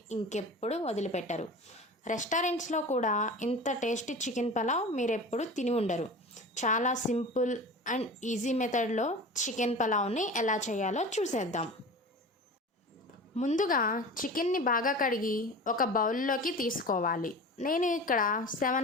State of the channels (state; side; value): normal; both; correlation 0.34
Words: ఇంకెప్పుడు వదిలిపెట్టరు. రెస్టారెంట్స్లో కూడా ఇంత టేస్టీ చికెన్ పలావ్ మీరు ఎప్పుడు తిని ఉండరు. చాలా సింపుల్ అండ్ ఈజీ మెథడ్లో చికెన్ పలావ్ని ఎలా చేయాలో చూసేద్దాం. ముందుగా చికెన్ని బాగా కడిగి ఒక బౌల్లోకి తీసుకోవాలి. నేను ఇక్కడ